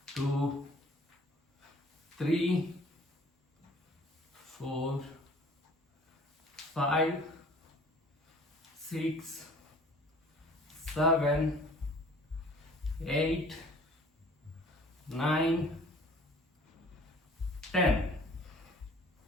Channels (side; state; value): both; normal; correlation 0.51